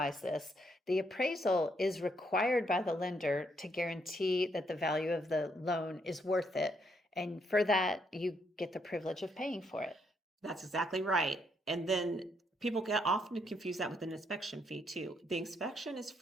this, the appraisal is required by the lender to guarantee that the value of the loan is worth it. And for that, you get the privilege of paying for it. That's exactly right. And then people get often confuse that with an inspection fee too. The inspection is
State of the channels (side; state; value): both; normal; correlation 0.74